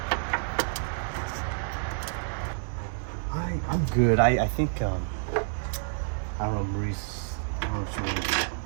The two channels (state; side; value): silent; left; digital silence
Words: I'm good. I think I don't know, Maurice, I don't know if you want to